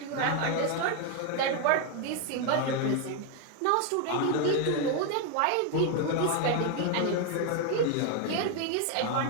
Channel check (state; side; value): different; both; correlation 0.01